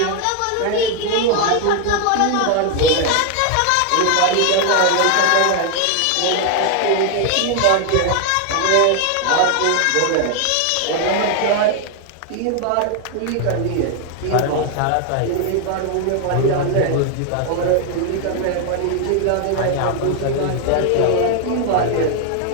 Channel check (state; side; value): different; both; correlation 0.01